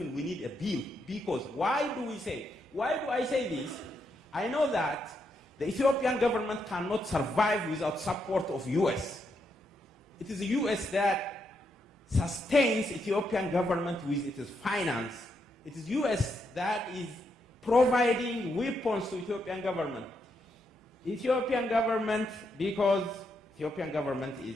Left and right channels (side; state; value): both; normal; correlation 0.80